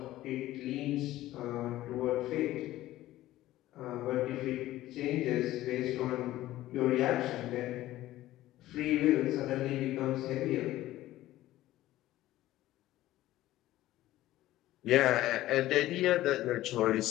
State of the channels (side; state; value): right; quieter; 15.3 dB